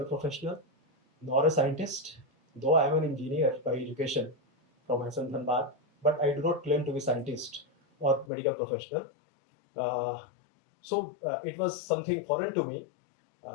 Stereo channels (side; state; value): right; drops out; at 8.2 s